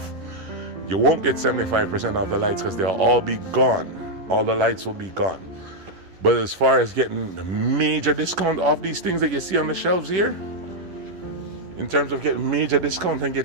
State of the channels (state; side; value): late; left; 11 ms